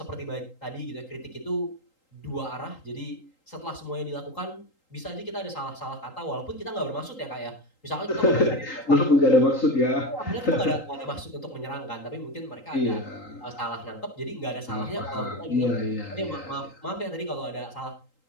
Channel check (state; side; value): late; right; 3.8 ms